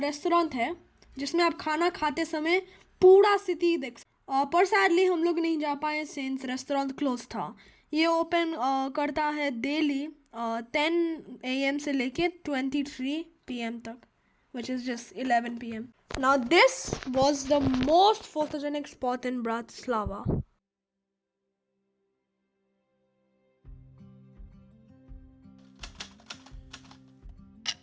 है जिसमें आप खाना खाते समय पूरा सिटी देख सकते। पर सैडली हम लोग नहीं जा पाए सिंस रेस्टोरेंट क्लोज था। ये ओपन करता है डेली 10 AM से लेके 23 PM तक, which is just 11 PM. Now this was the most photogenic spot in Bratislava.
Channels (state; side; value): identical; both; correlation 1.00